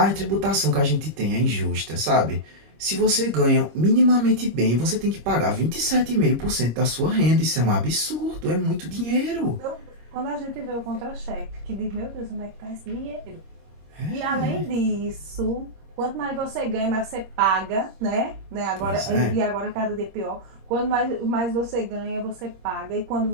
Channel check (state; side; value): late; left; 26 ms